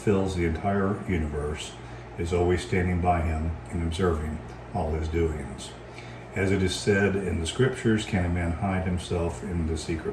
the entire universe, is always standing by him and observing all his doings. As it is said in the scriptures, can a man hide himself in the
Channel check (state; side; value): identical; both; correlation 1.00